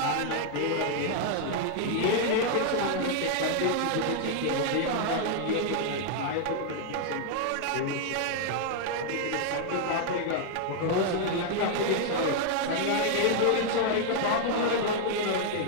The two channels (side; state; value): both; different; correlation 0.00